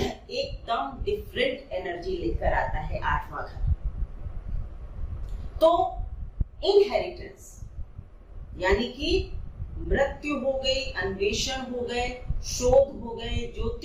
डिफरेंट एनर्जी लेकर आता है 8वां घर। तो इनहेरिटेंस यानी कि मृत्यु हो गई, अन्वेषण हो गए, शोध हो गए,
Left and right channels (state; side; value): identical; both; correlation 1.00